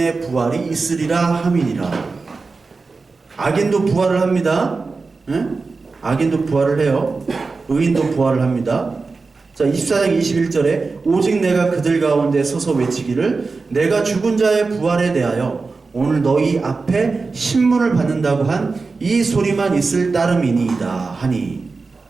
부활이 있으리라 함이니라. 악인도 부활을 합니다. 응? 악인도 부활을 해요. 의인도 부활을 합니다. 자, 24장 21절에 오직 내가 그들 가운데 서서 외치기를 내가 죽은 자의 부활에 대하여 오늘 너희 앞에 신문을 받는다고 한 이 소리만 있을 따름이니이다 하니.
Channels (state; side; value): quieter; left; 4.1 dB